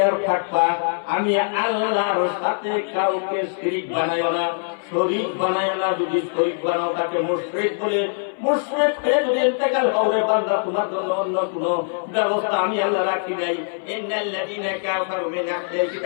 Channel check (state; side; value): silent; right; 60 dB below the other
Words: থাকবা, আমি আল্লাহর সাথে কাউকে শিরিক বানাইও না, শরীক বানাইও না। যদি শরীক বানাও তাকে মুশরিক বলে, মুশরিক হয়ে যদি ইন্তেকাল হবে বান্দা, তোমার জন্য অন্য কোনো ব্যবস্থা আমি আল্লাহ রাখি নাই। ইন্নাল্লাযীনা কাফারু মিন আহলিল